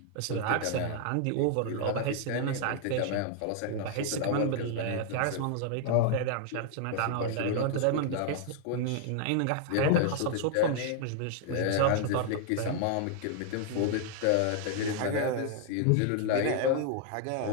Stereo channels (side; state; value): both; different; correlation 0.00